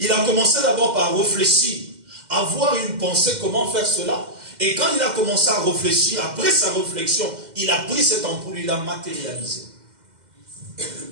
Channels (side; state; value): left; late; 2.1 ms